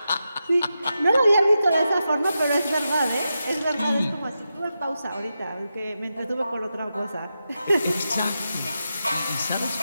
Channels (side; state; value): both; inverted; correlation -0.89